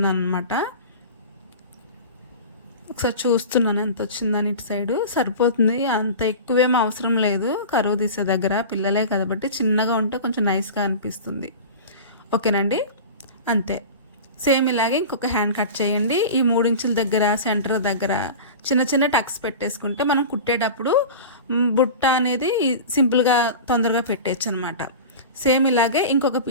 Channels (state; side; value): inverted; both; correlation -0.33